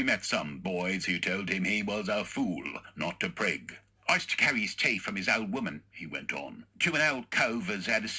met some boys who told him he was a fool, not a prig. I used to carry his tea from his old woman, he went on, to an old cove as had a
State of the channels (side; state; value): both; identical; correlation 1.00